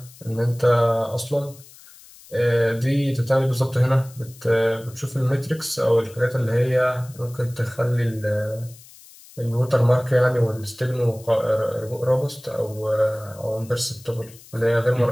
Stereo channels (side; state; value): left; noise; hiss, 22 dB below the sound